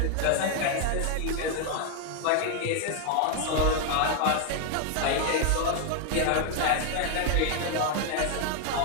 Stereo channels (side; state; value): both; different; correlation 0.00